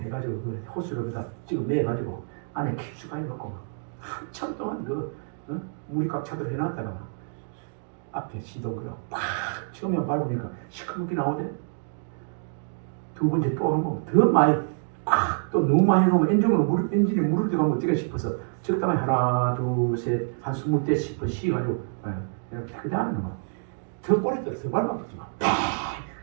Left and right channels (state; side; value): silent; left; digital silence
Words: 그 호수를 다 지금 매가지고 안에 깊숙하게 넣고 한참 동안 그 물이 꽉 차도록 해놨다가 앞에 시동그려 팍 처음에 밟으니까 시커멓게 나오대. 두 번째 또 한 번 더 많이 팍또 너무 많이 넣으면 엔진이 물을 들어가면 어떻게 싶어서 적당히 하나 둘 셋 한 20대 싶어 쉬가지고 이렇게 하는 거. 더 꼬리 들어서 밟아붙지 마.